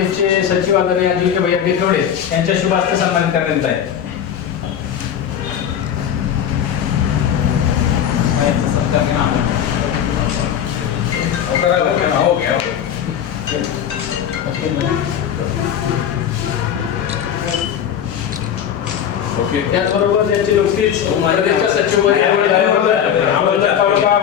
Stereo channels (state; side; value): quieter; right; 9.1 dB